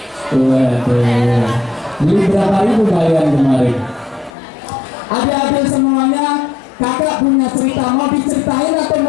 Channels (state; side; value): drops out; right; at 4.3 s